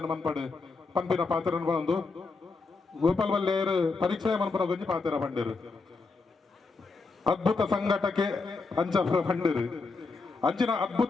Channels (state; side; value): quieter; right; 4.1 dB